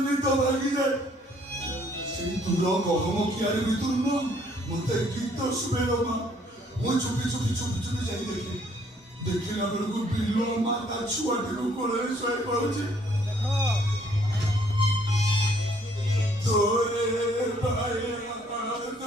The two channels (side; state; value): both; normal; correlation 0.64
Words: মৃত ভাগি যায় সেই তুলো কখনো কি আর ভিতর না মতে গীত শুনে মা ମୁଁ ଚୁପି ଯାଇ ଦେଖିଲା ବେଳକୁ ବିଲ ମା ତା ଛୁଆଟିକୁ କୋଳରେ ଶୋଇ ପଡୁଛି ତୋରେ